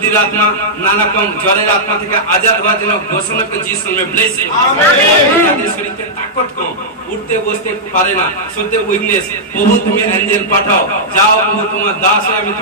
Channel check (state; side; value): normal; both; correlation -0.09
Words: আত্মা, নানা রকম জ্বরের আত্মা থেকে আজাদ হওয়ার জন্য ঘোষণা করে যিশু নামে ব্লেস। যাদের শরীরে তাকত কম, উঠতে বসতে পারে না, সত্যি উইকনেস, প্রভু তুমি অ্যাঞ্জেল পাঠাও। যাও প্রভু, তোমার দাস হয়ে আমি